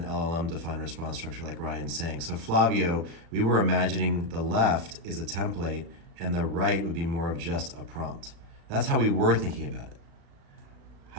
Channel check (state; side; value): late; left; 36 ms